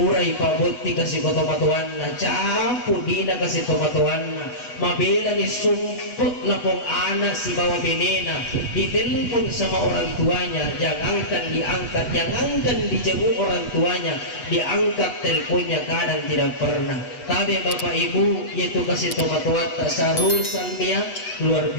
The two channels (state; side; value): late; right; 8.1 ms